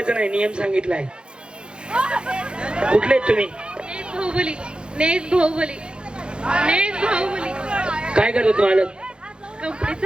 नाही, नियम सांगितलाय. कुठले आहेत तुम्ही? नेस भाऊबली. काय करतो तुम्हाला?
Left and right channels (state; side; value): late; left; 0.052 ms